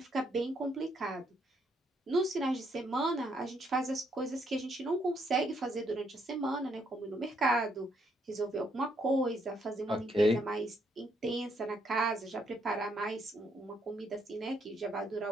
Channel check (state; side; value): normal; both; correlation 0.73